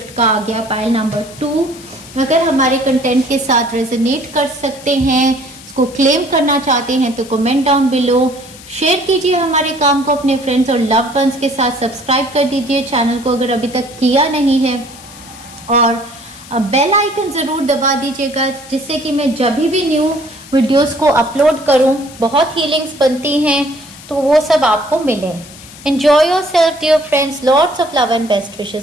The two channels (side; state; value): left; noise; hiss, 18 dB below the sound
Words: का आ गया। पाइल नंबर 2, अगर हमारे कंटेंट के साथ रेजोनेट कर सकते हैं, इसको क्लेम करना चाहते हैं तो कमेंट डाउन बिलो, शेयर कीजिए हमारे काम को अपने फ्रेंड्स और लव्ड वंस के साथ, सब्सक्राइब कर दीजिए चैनल को अगर अभी तक किया नहीं है और बेल आइकन जरूर दबा दीजिएगा जिससे कि मैं जब भी न्यू वीडियोस को अपलोड करूं, बहुत हीलिंग्स बनती हैं तो वो सब आपको मिले। Enjoy yourself dear friends, lots of love and best